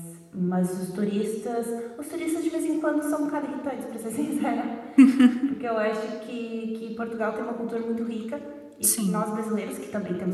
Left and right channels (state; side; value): identical; both; correlation 1.00